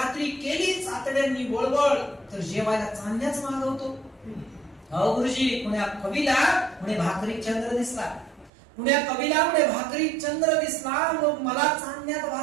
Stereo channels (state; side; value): drops out; left; at 8.5 s